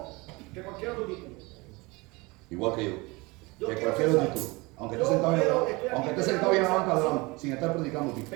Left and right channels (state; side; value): quieter; left; 24.6 dB